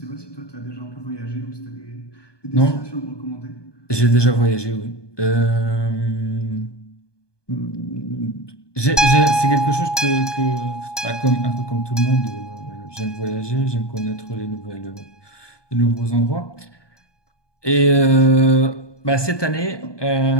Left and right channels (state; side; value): late; right; 1.2 ms